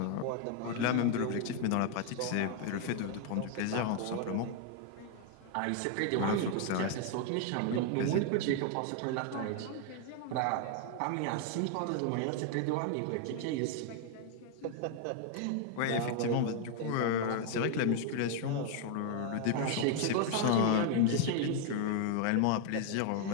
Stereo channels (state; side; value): different; both; correlation 0.00